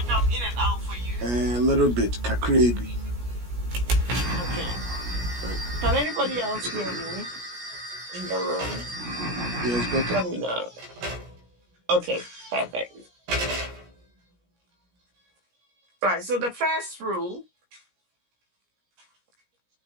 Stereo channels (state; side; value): late; left; 17 ms